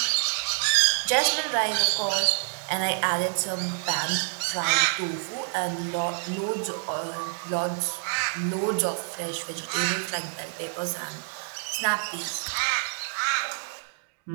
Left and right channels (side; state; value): left; silent; digital silence